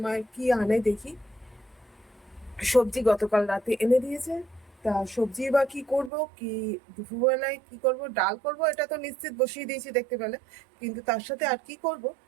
কি আনে দেখি। সবজি গতকাল রাতে এনে দিয়েছে। তা সবজি বা কি করব, কি দুপুরবেলায় কি করব, ডাল করব এটা তো নিশ্চিত বসিয়ে দিয়েছি দেখতে পেলে। কিন্তু তার সাথে আর কি করব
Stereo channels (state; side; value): drops out; left; at 6.1 s